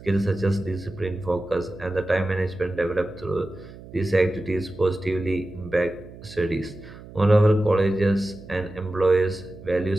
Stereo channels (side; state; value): right; noise; hum, 17 dB below the sound